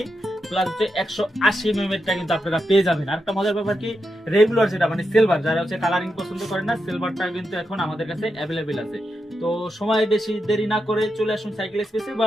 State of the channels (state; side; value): normal; both; correlation 0.86